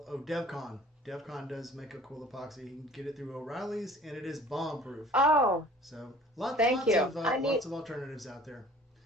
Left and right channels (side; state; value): both; normal; correlation 0.49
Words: DevCon. DevCon does make a cool epoxy. You can get it through O'Reilly's, and it is bomb proof. oh, So thank you. Lots of alternatives out there.